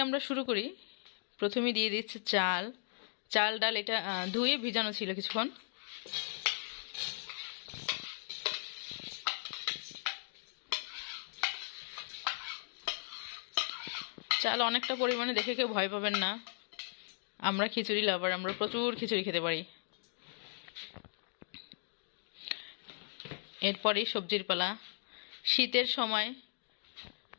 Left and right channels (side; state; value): right; silent; digital silence